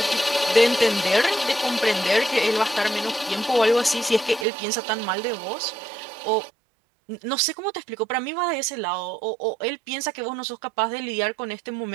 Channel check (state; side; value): drops out; left; at 4.5 s